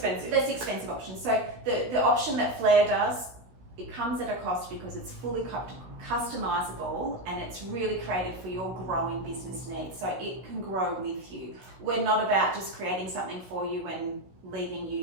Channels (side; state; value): left; late; 16 ms